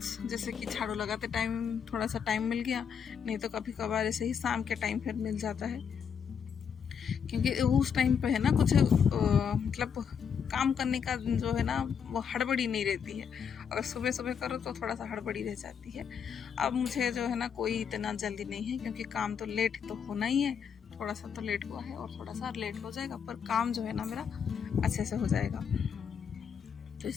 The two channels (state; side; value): quieter; right; 7.1 dB